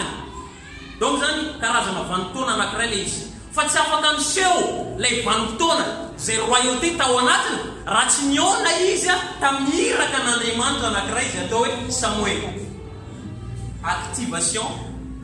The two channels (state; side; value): identical; both; correlation 1.00